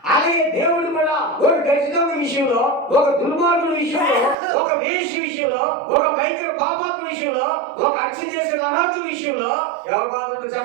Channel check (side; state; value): left; drops out; at 4.4 s